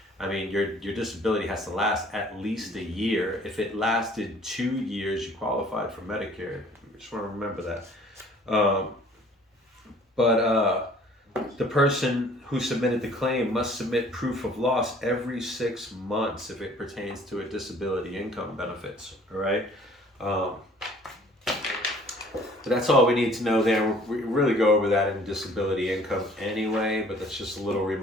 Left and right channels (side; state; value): both; normal; correlation 0.54